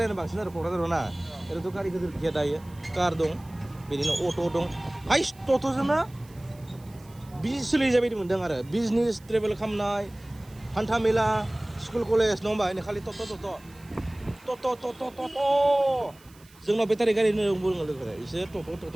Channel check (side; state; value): right; noise; hiss, 26 dB below the sound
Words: बांसिन आरो क'क्राझाराव ना। ओरैनोथ' गारि गिदिर गैया दायो, कार दं, बिदिनो अट' दं। हाइस टट'जोंनो बिजनेस सोलिजाबाय बायदि मोनदों आरो बिजनेस ट्रेभेल खालामनाय, हान्था मेला, स्कुल कलेज नङा होमबा? खालि टट'। जोंनाव बेटारि गारि होनना बुङो लोगोफोरा, इसोर